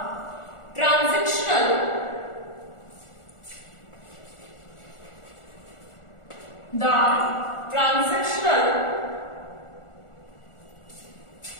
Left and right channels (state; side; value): late; right; 1.4 ms